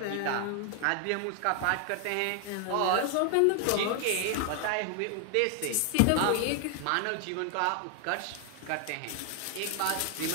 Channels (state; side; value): different; both; correlation 0.00